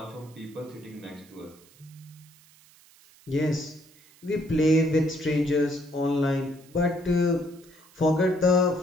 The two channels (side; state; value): right; noise; hiss, 27 dB below the sound